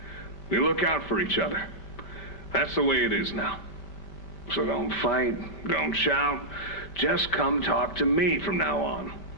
We look out for each other. That's the way it is now. So don't fight, don't shout. Just come talk to me from now on,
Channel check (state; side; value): late; right; 5.1 ms